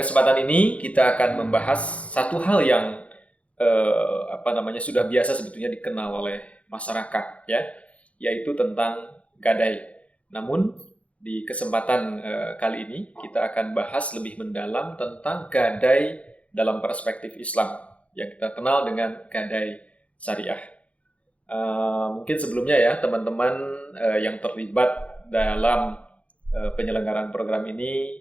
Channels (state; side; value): late; right; 0.064 ms